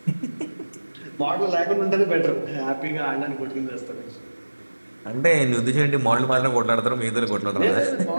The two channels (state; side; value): inverted; both; correlation -1.00